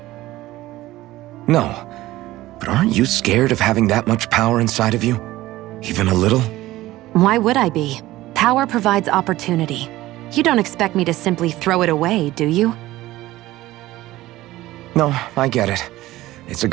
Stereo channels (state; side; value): quieter; left; 16.7 dB